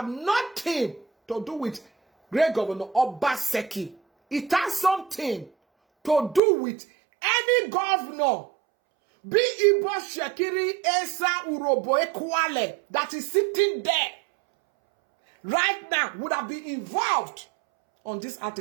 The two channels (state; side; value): drops out; left; at 6.4 s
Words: nothing to do with Great Governor Obaseki. It has something to do with any governor, be Ibo Shekiri Esa Urobo Ekwale, that is sitting there right now would have been involved on these